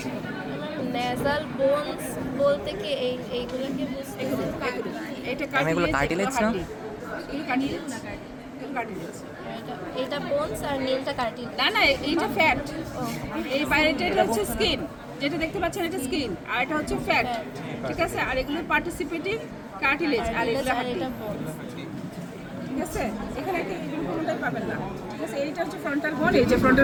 নেজাল বোনস বলতে কি এইগুলোকে বুঝতে, এটা কার্টিলেজ না, এগুলো কার্টিলেজ না, কার্টিলেজ। এটা বোনস আর নীলটা কার্টিলেজ। না না, এইটা ফ্যাট, এই বাইরেটা এটা হচ্ছে স্কিন, যেটা দেখতে পাচ্ছেন এটা স্কিন, আর এটা হচ্ছে ফ্যাট, ঠিক আছে। আর এগুলো পার্টিসিপেটিভ কার্টিলেজ, আর এগুলো হাড্ডি, ঠিক আছে। এখানে কোনোটাই পাবেন না, ঠিক আছে। এইটা হচ্ছে ফ্রন্টাল বোন, এই যে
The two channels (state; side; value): identical; both; correlation 1.00